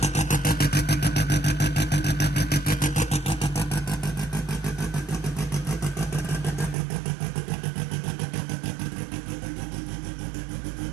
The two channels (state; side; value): drops out; left; at 6.8 s